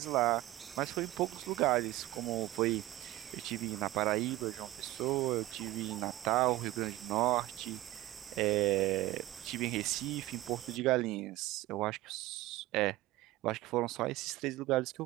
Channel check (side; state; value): left; quieter; 16.9 dB